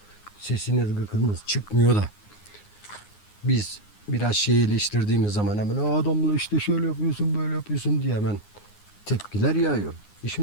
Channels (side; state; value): right; late; 9.6 ms